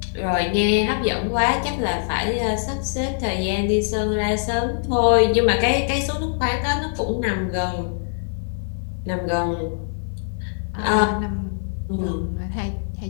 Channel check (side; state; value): right; silent; digital silence